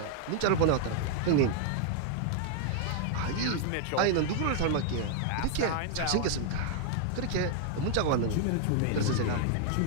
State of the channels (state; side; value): different; both; correlation 0.00